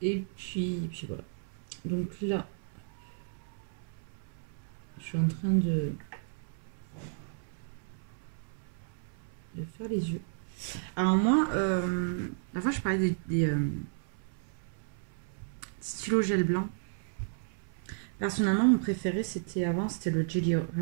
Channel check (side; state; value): left; silent; 56 dB below the other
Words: Et puis voilà. Donc là, je suis en train de faire les yeux. Alors moi, la fois je parlais des stylos gel blanc. Personnellement, mon préféré c'était le Jelly